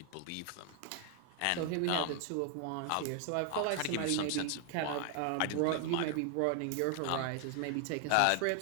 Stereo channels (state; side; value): different; both; correlation 0.00